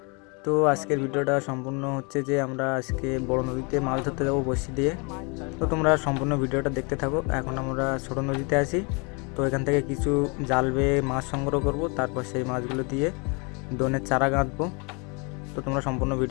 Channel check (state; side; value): quieter; right; 32.0 dB